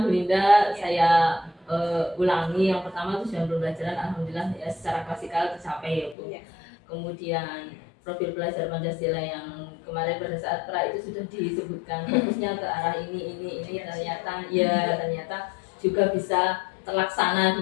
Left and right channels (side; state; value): right; drops out; at 6.2 s